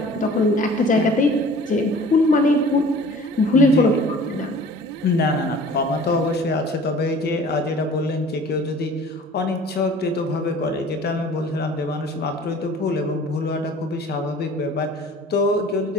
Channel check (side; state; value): both; normal; correlation 0.46